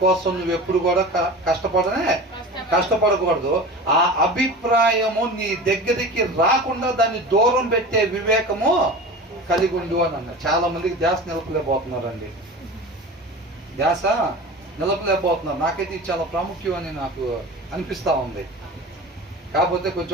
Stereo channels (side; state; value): both; normal; correlation 0.34